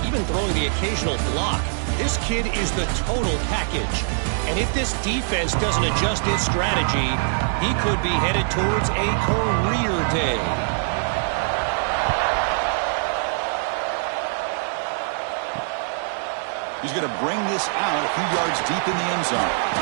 even throwing the occasional block. This kid is the total package. And if this defense doesn't adjust its strategy, he could be headed towards a career day. He's going to bring this out a few yards deep in the end zone.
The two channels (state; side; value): silent; left; digital silence